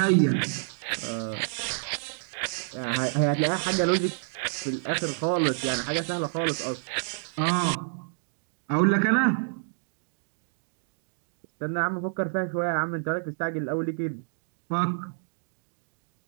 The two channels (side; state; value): left; silent; digital silence